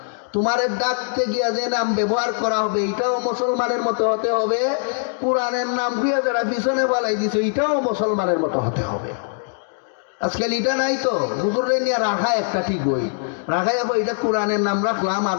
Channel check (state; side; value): silent; right; 64 dB below the other